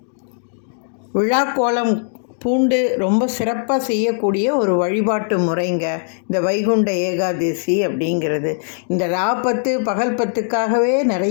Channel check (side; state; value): right; silent; digital silence